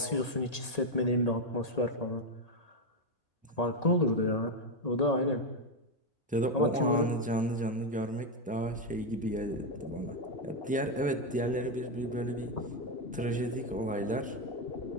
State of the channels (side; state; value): both; normal; correlation 0.06